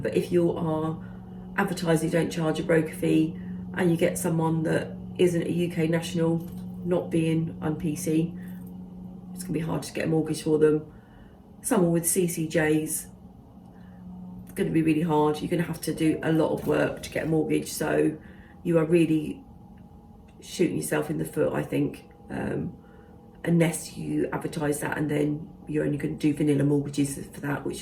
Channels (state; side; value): identical; both; correlation 1.00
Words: But if you are advertising, don't charge a broker fee, and you get someone that isn't a UK national, not being on PC, it's going to be hard to get a mortgage for them. Someone with CCJs, it's going to be really hard. You're going to have to do a lot of work to get a mortgage, so you are really shooting yourself in the foot, I think, unless you advertise that and then you're only going to do vanilla mortgages for that,